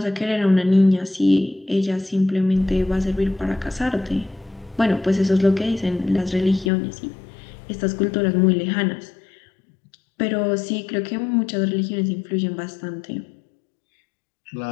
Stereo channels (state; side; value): drops out; right; at 6.7 s